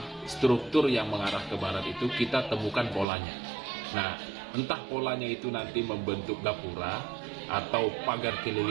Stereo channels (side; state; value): left; drops out; at 3.1 s